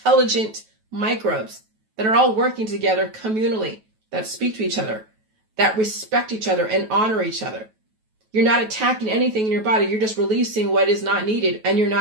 microbes that are all working together communally, that speak to each other, that respect each other and honor each other. You're not attacking anything in your body. You're just releasing what is not needed, and you're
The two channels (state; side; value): late; left; 9.3 ms